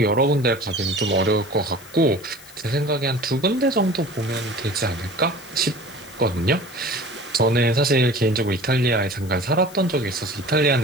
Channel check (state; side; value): noise; left; hiss, 21 dB below the sound